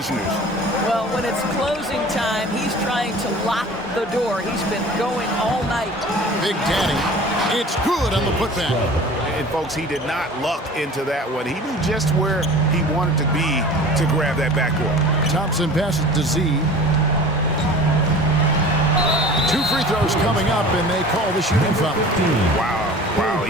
Well, when it's closing time, he's trying to lock the door. He's been going all night. Big Daddy, it's good on the putback. And, folks, he did not luck into that one. He knew just where he wanted to be to grab that backcourt. Thompson passes to Z. 2 free throws coming up, and they call the shooting foul. Wow,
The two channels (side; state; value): both; normal; correlation 0.42